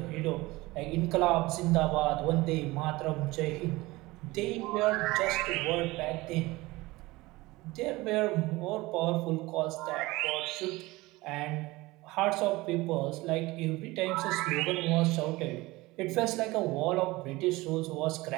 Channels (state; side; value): quieter; left; 20.7 dB